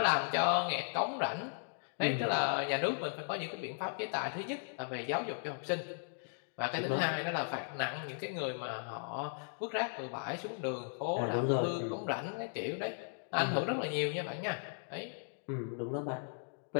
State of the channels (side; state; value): right; silent; digital silence